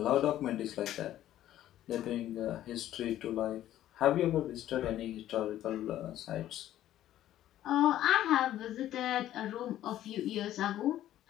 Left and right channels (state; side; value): quieter; right; 12.8 dB